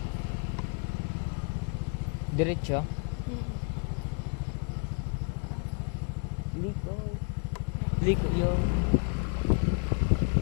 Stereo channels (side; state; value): right; quieter; 39.8 dB